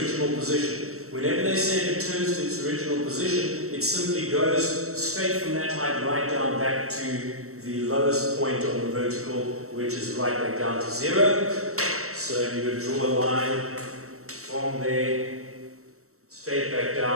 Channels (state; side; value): late; left; 0.64 ms